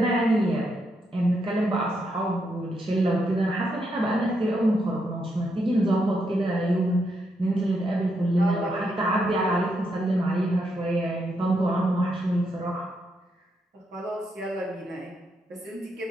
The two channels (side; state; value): both; normal; correlation 0.80